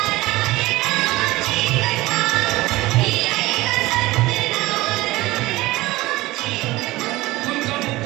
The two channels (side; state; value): left; quieter; 19.2 dB